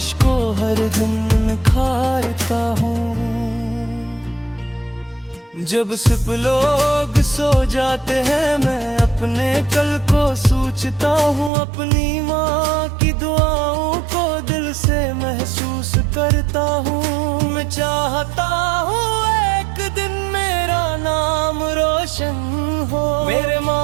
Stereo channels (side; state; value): left; drops out; at 11.5 s